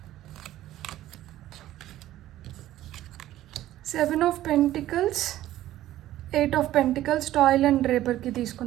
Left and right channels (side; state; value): left; quieter; 14.0 dB